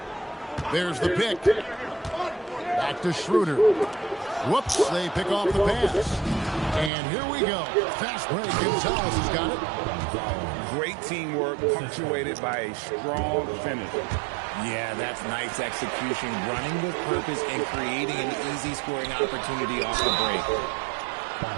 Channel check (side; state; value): left; drops out; at 6.9 s